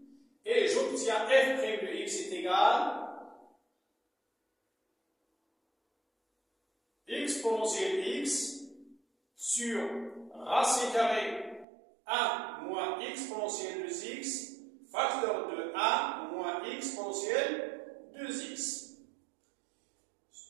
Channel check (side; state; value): left; drops out; at 11.7 s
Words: et j'obtiens f' de x est égal exponentielle x sur racine carrée 1 moins exponentielle de x, facteur de 1 moins exponentielle de x.